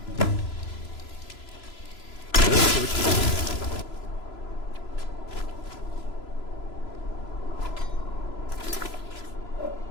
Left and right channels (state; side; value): late; right; 3.0 ms